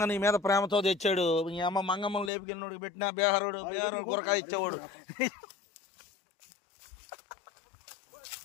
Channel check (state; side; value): drops out; right; at 2.3 s